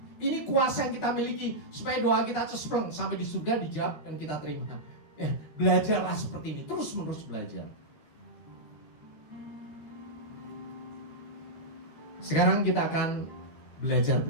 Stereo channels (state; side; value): late; right; 13 ms